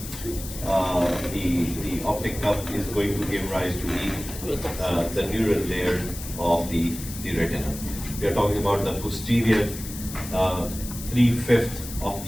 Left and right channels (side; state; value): left; noise; hiss, 11 dB below the sound